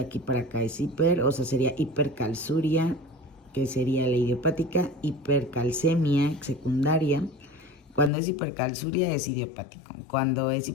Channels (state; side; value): drops out; right; at 8.1 s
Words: para acá es sería hipercalciuria, que sería la idiopática, hipercalcemia secundaria. Cuando es hipercalciuria es idiopático, cuando es